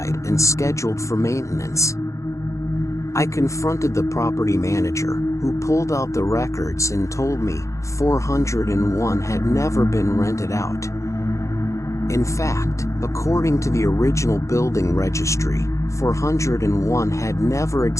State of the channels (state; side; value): late; right; 0.15 ms